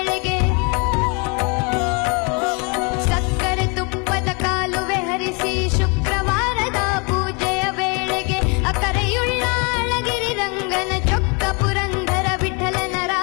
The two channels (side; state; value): right; quieter; 32.7 dB